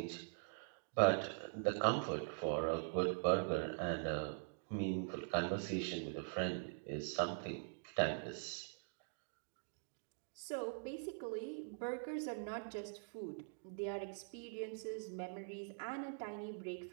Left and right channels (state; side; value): silent; left; digital silence